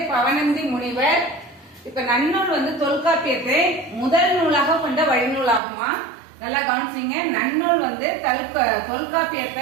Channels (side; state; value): left; drops out; at 5.6 s